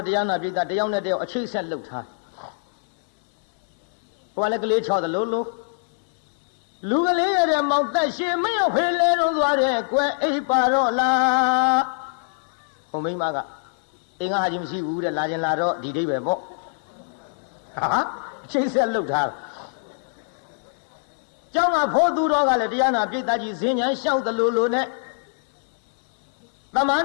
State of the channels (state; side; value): silent; right; 63 dB below the other